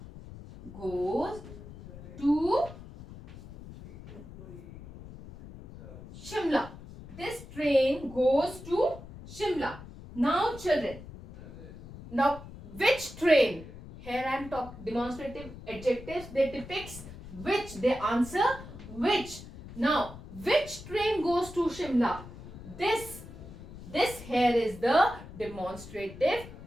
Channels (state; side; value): noise; left; rumble, 15 dB below the sound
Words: Goes to Shimla. This train goes to Shimla. Now, children, now which train? Here I am talking demonstrative adjectives. They depicts which. They answer which. Now, which train goes to Shimla? This here is the demonstrative